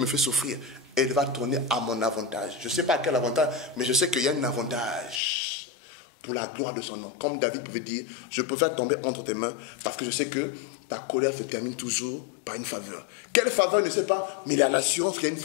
fait souffrir, elle va tourner à mon avantage. Je ne sais pas à quel avantage, mais je sais qu'il y a un avantage pour la gloire de son nom. Comme David pouvait dire, je préfère tomber entre tes mains parce que je sais que ta colère se termine toujours par une faveur. Quelle faveur, je ne sais pas, mais il y a l'assurance qu'il y a une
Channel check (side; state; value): right; drops out; at 5.2 s